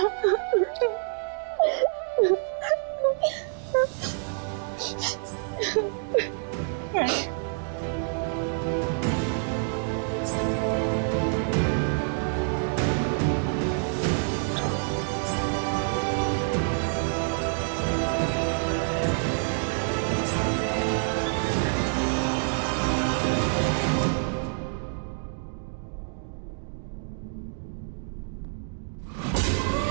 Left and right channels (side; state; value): left; silent; digital silence